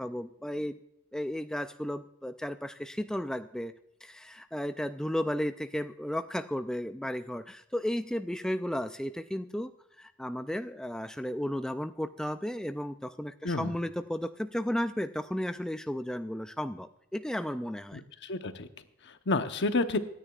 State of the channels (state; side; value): normal; both; correlation 0.78